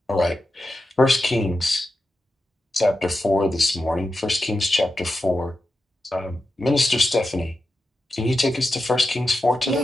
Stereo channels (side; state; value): both; normal; correlation 0.90